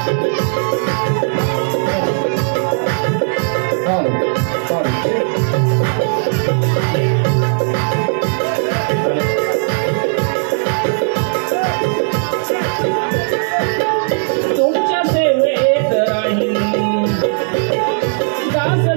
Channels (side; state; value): left; silent; digital silence